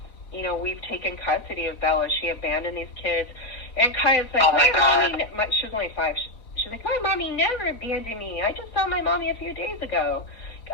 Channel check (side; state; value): right; late; 4.0 ms